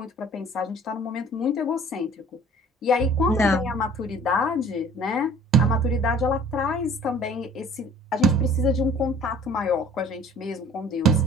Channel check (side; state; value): both; normal; correlation 0.50